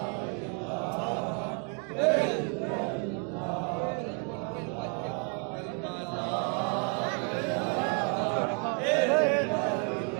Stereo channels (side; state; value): left; quieter; 39.8 dB